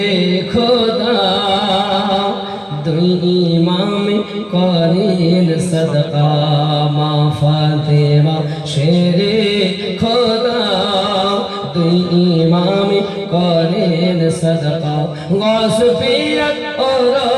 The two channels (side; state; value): both; identical; correlation 1.00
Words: খোদা দুই ইমামে করেন সদকা মা ফাতেমা শেরে খোদা দুই ইমামে করেন সদকা গস পিয়াত